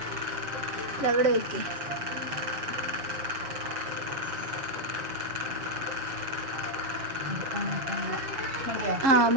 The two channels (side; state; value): left; late; 7.4 ms